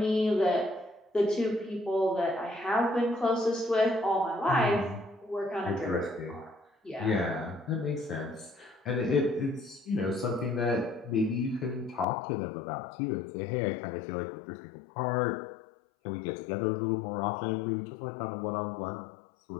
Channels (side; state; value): right; drops out; at 12.1 s